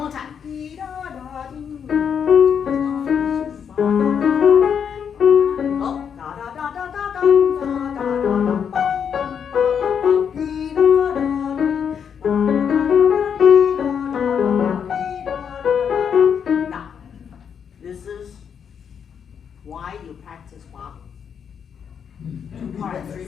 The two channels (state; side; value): quieter; right; 7.5 dB